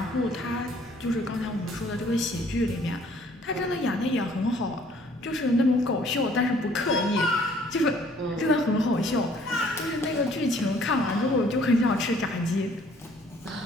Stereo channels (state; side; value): normal; both; correlation 0.59